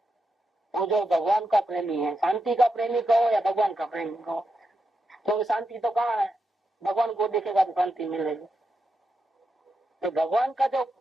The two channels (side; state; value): both; normal; correlation 0.86